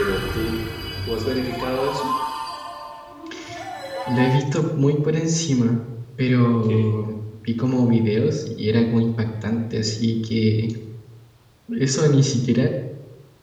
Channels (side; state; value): both; identical; correlation 1.00